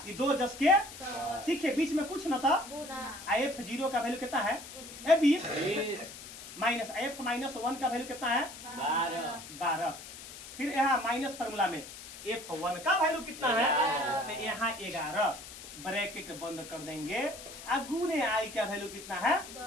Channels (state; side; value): noise; left; hiss, 13 dB below the sound